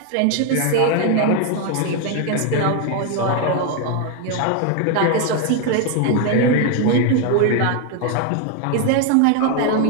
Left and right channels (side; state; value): both; different; correlation 0.01